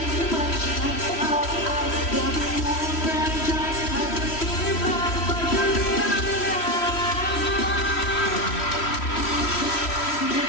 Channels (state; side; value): late; right; 3.1 ms